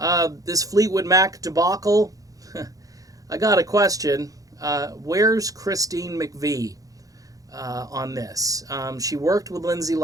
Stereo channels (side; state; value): left; late; 0.17 ms